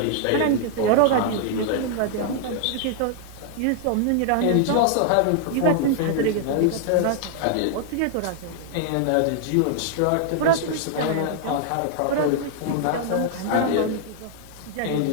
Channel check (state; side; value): different; both; correlation 0.00